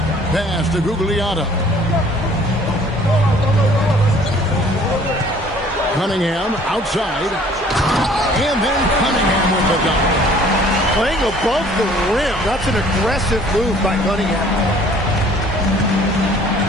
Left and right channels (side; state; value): both; normal; correlation 0.55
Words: Pass to Gugliotta. Cunningham outside. And then Cunningham with the dunk. Playing above the rim. That's an aggressive move by Cunningham.